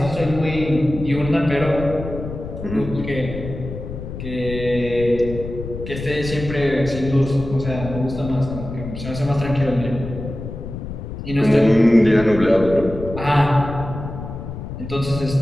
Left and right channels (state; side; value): noise; left; rumble, 9 dB below the sound